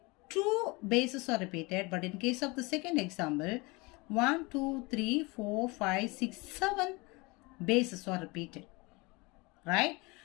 2 bases are repeated, but in case of the second example, 1, 2, 3, 4, 5, 6, 7 bases are repeated, right?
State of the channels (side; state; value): right; quieter; 25.7 dB